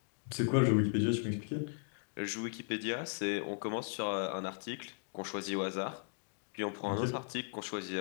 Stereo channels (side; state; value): right; silent; digital silence